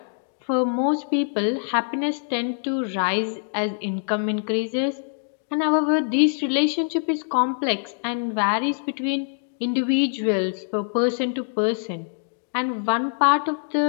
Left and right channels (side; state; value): right; silent; digital silence